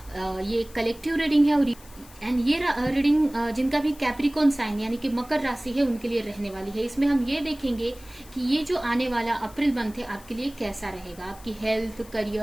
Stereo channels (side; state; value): left; noise; hiss, 22 dB below the sound